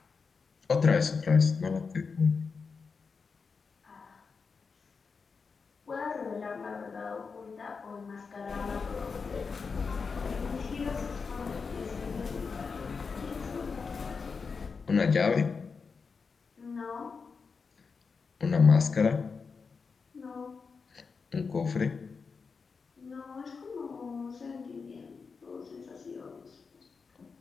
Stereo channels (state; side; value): quieter; right; 5.1 dB